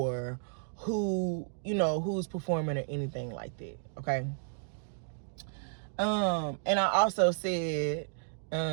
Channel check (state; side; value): silent; left; digital silence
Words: who's performing or anything like that. Okay. And I also said,